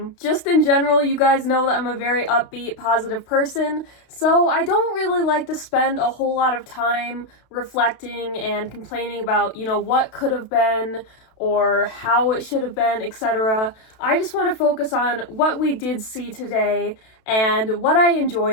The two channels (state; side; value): late; right; 32 ms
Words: Just in general, you guys know that I'm a very upbeat, positive person, so I don't really like to spend a whole lot of time reflecting and complaining about, what could have been, or how it should have been, etc. I just want to focus on what we did see today and what I